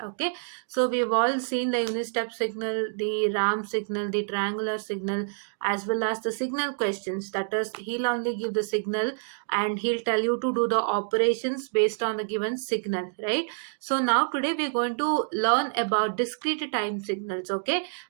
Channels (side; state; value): left; silent; digital silence